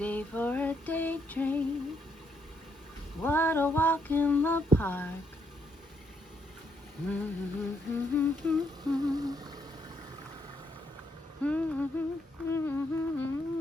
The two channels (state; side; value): normal; both; correlation 0.75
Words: for a daydream. What a walk in the park.